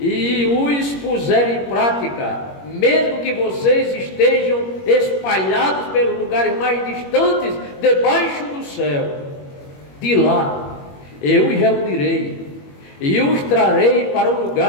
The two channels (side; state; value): right; late; 21 ms